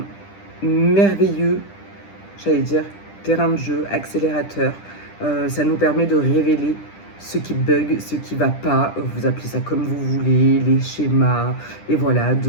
merveilleux, j'allais dire, terrain de jeu, accélérateur. Ça nous permet de révéler ce qui bug, ce qui va pas, vous appelez ça comme vous voulez, les schémas, et voilà,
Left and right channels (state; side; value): late; right; 10 ms